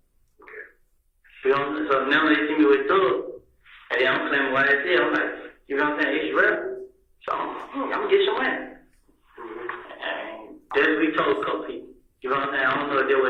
You know what I'm saying? So now they see me with Thug. And then I'm claiming YSL. I'm like, you know what I'm saying? It's real. So I'm going to get some money. And that's what we told a couple people. You know what I'm saying? I don't know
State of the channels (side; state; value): both; identical; correlation 1.00